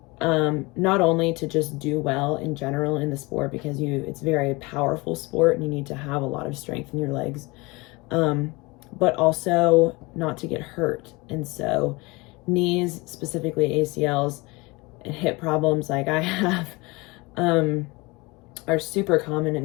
not only to just do well in general in the sport, because it's a very powerful sport and you need to have a lot of strength in your legs, but also not to get hurt. And so knees, specifically ACLs, and hip problems like I have, are super common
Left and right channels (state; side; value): quieter; right; 24.5 dB